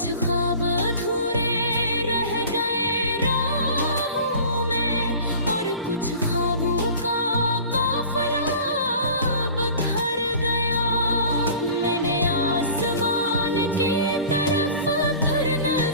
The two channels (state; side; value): inverted; both; correlation -0.42